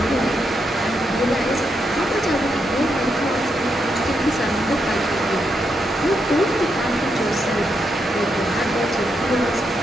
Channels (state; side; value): normal; both; correlation 0.81